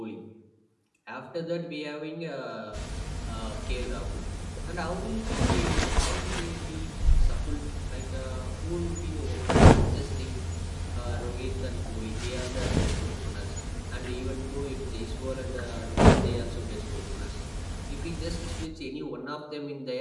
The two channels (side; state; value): both; identical; correlation 1.00